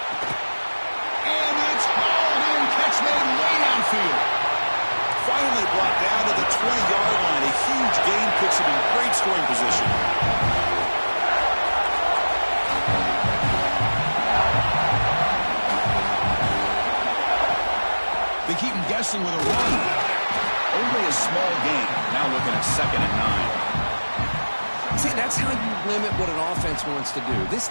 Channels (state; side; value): inverted; both; correlation -1.00